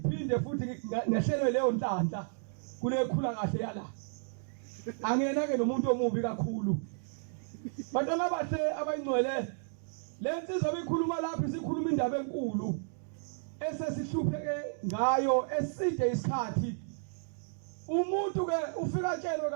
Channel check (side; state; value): left; silent; digital silence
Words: futhi ngehlele leyo nhlanhla kule khula kahle yala angena ke nomuntu omubi kakhulu bantwana bathe abayingcwele lensizwa bikhuluma lapha sikhuluma indaba enkulu esesihlupheke ngayo eside isikhathi umuntu ke ufika tshelwe